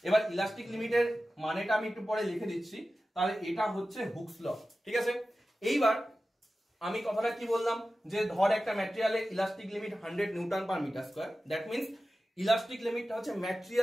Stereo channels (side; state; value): both; normal; correlation 0.94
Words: এবার ইলাস্টিক লিমিটের মানেটা আমি একটু পরে লিখে দিচ্ছি, তাহলে এটা হচ্ছে হুকস ল। ঠিক আছে, এইবার আমি কথাটা কি বললাম যে ধর একটা ম্যাটেরিয়ালের elastic limit 100 newton per metre square, that means elastic লিমিটটা হচ্ছে